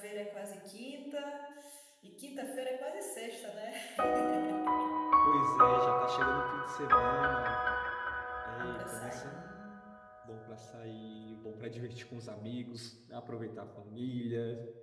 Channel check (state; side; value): identical; both; correlation 1.00